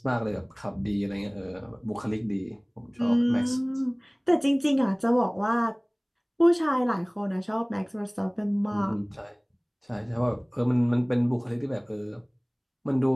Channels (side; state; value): both; identical; correlation 1.00